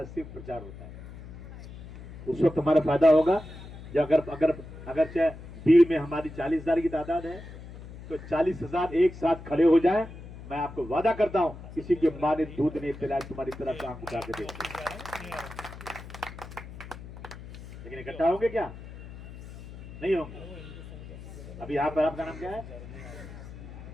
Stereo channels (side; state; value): left; noise; hum, 14 dB below the sound